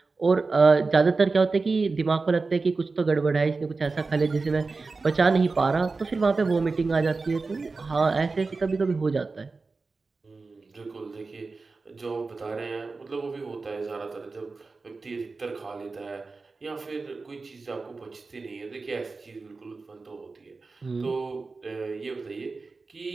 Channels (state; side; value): quieter; left; 4.0 dB